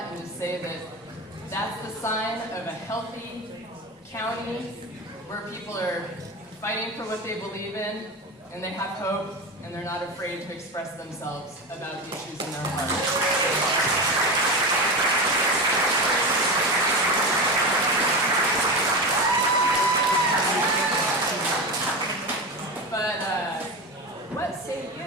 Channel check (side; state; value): both; normal; correlation 0.22